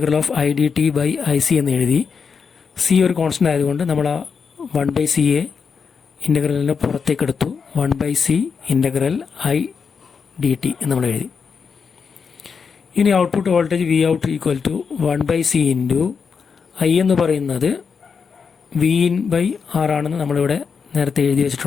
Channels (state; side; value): quieter; right; 5.9 dB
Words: of I D T by I C എന്ന് എഴുതി. സി ഒരു കോൺസ്റ്റൻ്റ് ആയതുകൊണ്ട് നമ്മൾ ആ 1/c ഇൻ്റഗ്രലിനെ പുറത്തേക്ക് എടുത്തു. 1/c integral I D T എന്ന് നമ്മൾ എഴുതി. ഇനി output voltage V out equal to 1/c into I എന്ന് പറയുന്നത് വി ഇൻ ബൈ ആർ ആണെന്ന് നമ്മളിവിടെ നേരത്തെ എഴുതി